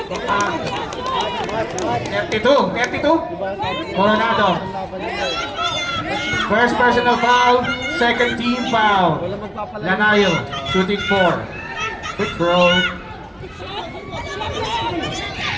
32. Coronado. First personal foul, second team foul. Lanayo, shooting 4. Quick throw.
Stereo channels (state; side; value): identical; both; correlation 1.00